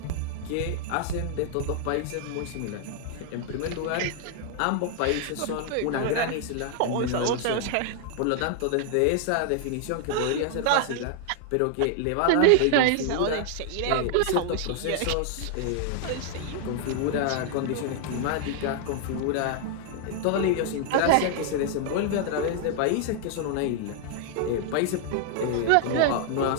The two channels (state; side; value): different; both; correlation 0.00